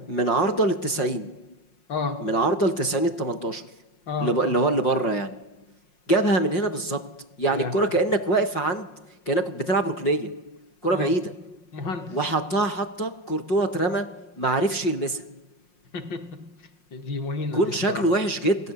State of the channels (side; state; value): right; late; 5.6 ms